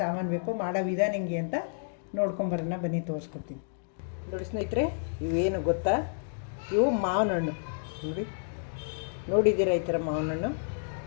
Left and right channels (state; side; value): silent; right; digital silence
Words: ಸಾಮಾನು ಬೇಕು, ಮಾಡೋ ವಿಧಾನ ಹೆಂಗೆ ಅಂತ ನೋಡ್ಕೊಂಬರೋಣ ಬನ್ನಿ, ತೋರಿಸ್ಕೊಡ್ತೀನಿ. ನೋಡಿ ಸ್ನೇಹಿತರೆ, ಇವೇನು ಗೊತ್ತಾ, ಇವು ಮಾವಿನ ಹಣ್ಣು. ನೋಡಿದ್ದೀರಾ ಈ ಥರ ಮಾವಿನ ಹಣ್ಣು?